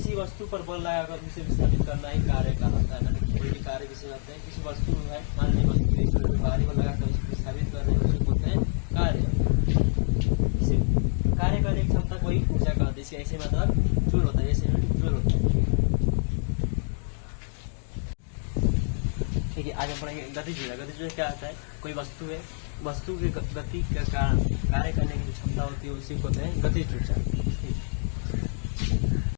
वस्तु पर बल लगाकर उसे विस्थापित करना ही कार्य कहलाता है। कोई भी कार्य जिसे कहते हैं, किसी वस्तु में मान लीजिए वस्तु भारी बल लगाकर उसे विस्थापित कर रहे हैं उसे बोलते हैं कार्य। कार्य करने की क्षमता कोई ऊर्जा कहते हैं, ऐसे मतलब जूल होता है, ऐसे जूल होता है। ठीक है, आज हम पढ़ेंगे गतिज। गतिज क्या होता है? कोई वस्तु है, वस्तु की गति के कारण कार्य करने की जो क्षमता होती है उसी को कहते हैं गतिज ऊर्जा।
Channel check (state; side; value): silent; right; 60 dB below the other